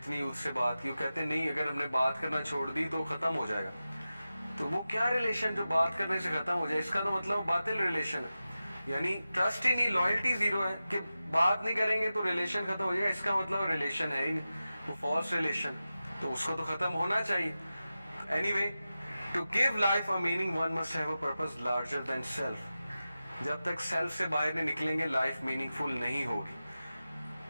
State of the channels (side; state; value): both; inverted; correlation -0.94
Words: उससे बात की वो कहते नहीं अगर हमने बात करना छोड़ दी तो ख़त्म हो जाएगा। तो वो क्या रिलेशन जो बात करने से ख़त्म हो जाए, इसका तो मतलब बातिल रिलेशन है, यानी ट्रस्ट ही नहीं, लॉयल्टी ज़ीरो है कि बात नहीं करेंगे तो रिलेशन ख़त्म हो जाएगा, इसका मतलब रिलेशन है ही नहीं, वो फॉल्स रिलेशन, तो उसको तो ख़त्म होना चाहिए। Anyway, to give life a meaning one must have a purpose larger than self. जब तक सेल्फ से बाहर नहीं निकलेंगे लाइफ मीनिंगफुल नहीं